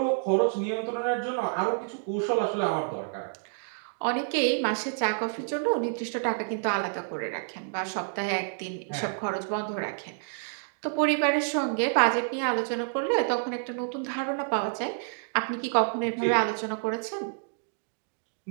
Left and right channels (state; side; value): silent; left; digital silence